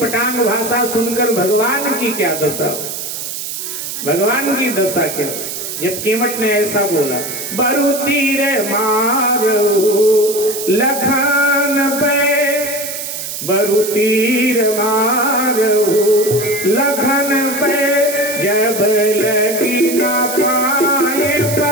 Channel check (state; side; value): noise; right; hiss, 6 dB below the sound